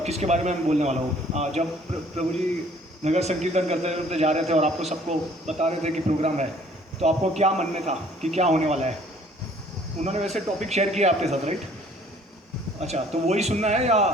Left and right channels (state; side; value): normal; both; correlation 0.57